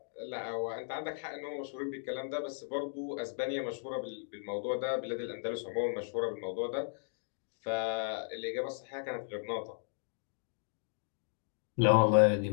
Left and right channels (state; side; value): silent; right; digital silence